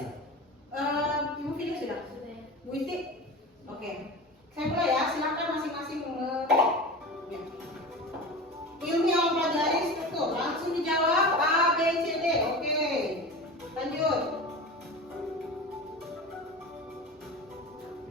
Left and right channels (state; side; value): normal; both; correlation 0.31